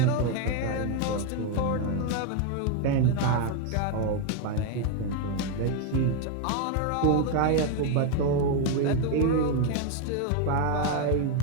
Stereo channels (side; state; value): both; different; correlation 0.01